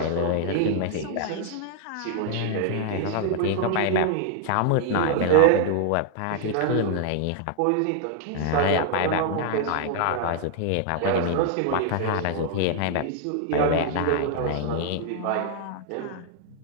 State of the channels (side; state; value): both; different; correlation 0.00